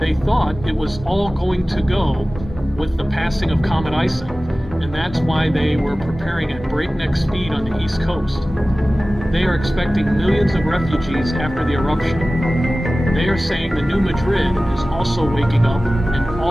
thought it was all going to go with the passing of Comet Ison, and that's why they were preparing at breakneck speed on the East Coast. They are expecting millions of refugees after the eruption. They are saying the New Madrid is also waking up, and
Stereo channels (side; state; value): both; normal; correlation 0.97